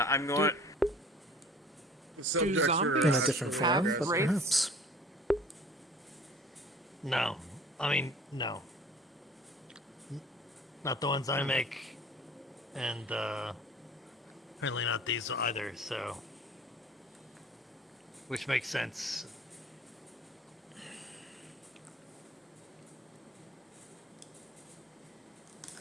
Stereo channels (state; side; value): normal; both; correlation 0.47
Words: I'm going... Do zombies in a different form, but perhaps. No. I mean, no. Not the ones I make, and apparently not these either, so... Which makes sense.